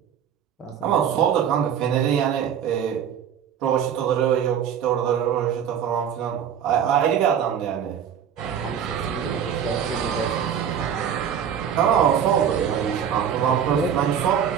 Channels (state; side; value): quieter; left; 8.5 dB